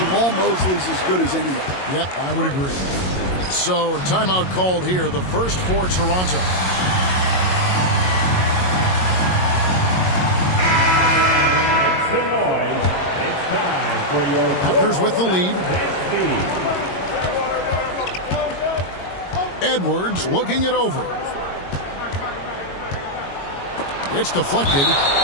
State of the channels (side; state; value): right; late; 22 ms